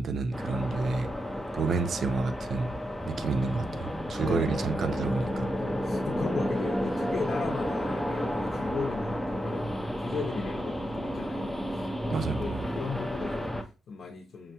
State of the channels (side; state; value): both; normal; correlation 0.86